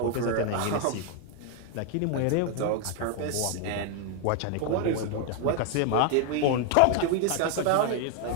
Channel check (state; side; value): different; both; correlation 0.00